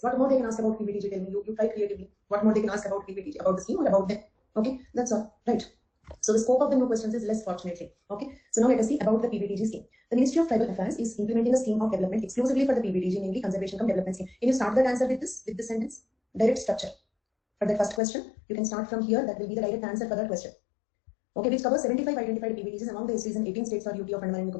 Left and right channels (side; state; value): right; drops out; at 18.0 s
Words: What more they can ask about PBTG? Tell me. You try creatively. What more they can ask about PBTG, about the scheme or about them? Okay, that's all. Right. So the scope of the new questions is less, fortunately. Okay. So now let us see about the PBTG scheme. The Ministry of Tribal Affairs is implementing a scheme of development exclusively for the PBTG, namely Conservation Cum Development Scheme. Can you start that answer with this sentence? Direct structure. For the first question, you can start from here. That will be the direct answer for that question. Okay, which covers 75 identified PBTGs among the STs in 18 states or UT of Andaman and